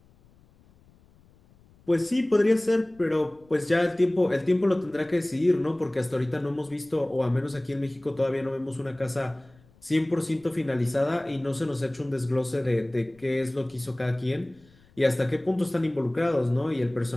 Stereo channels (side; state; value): left; noise; rumble, 29 dB below the sound